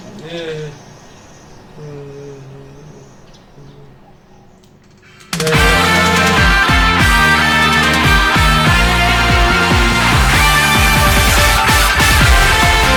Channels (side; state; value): both; identical; correlation 1.00